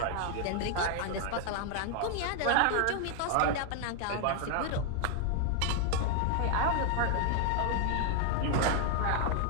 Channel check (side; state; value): both; different; correlation 0.01